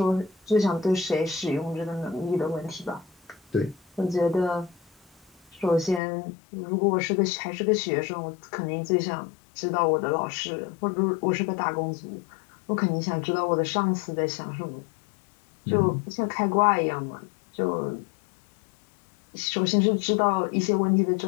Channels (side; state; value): right; drops out; at 6.0 s